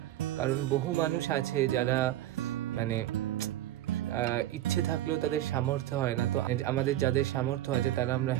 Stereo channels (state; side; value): quieter; left; 13.8 dB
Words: কারণ বহু মানুষ আছে যারা মানে ইচ্ছে থাকলেও তাদের সামর্থ্য হয় না। তো আমাদের যাদের সামর্থ্য আছে তারা আমরা